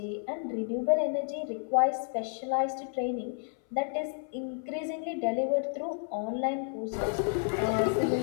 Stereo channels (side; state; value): right; silent; 57 dB below the other